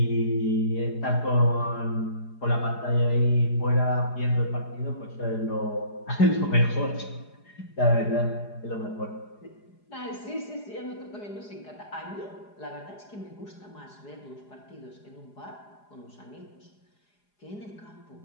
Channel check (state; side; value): late; right; 4.8 ms